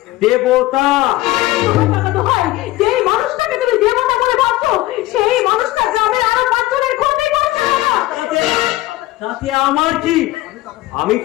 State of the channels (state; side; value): quieter; right; 17.7 dB